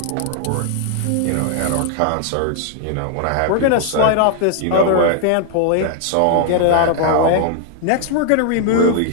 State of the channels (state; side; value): different; both; correlation 0.00